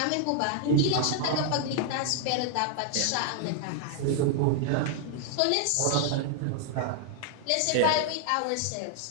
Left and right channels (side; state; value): both; different; correlation 0.00